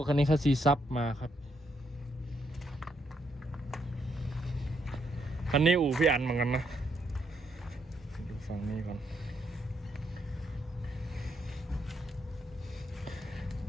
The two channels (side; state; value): both; normal; correlation 0.76